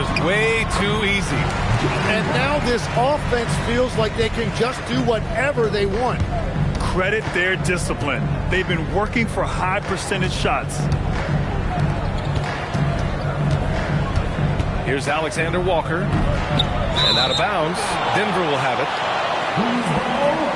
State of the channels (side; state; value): both; identical; correlation 1.00